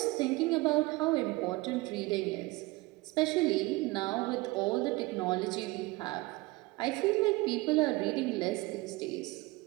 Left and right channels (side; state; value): left; quieter; 22.0 dB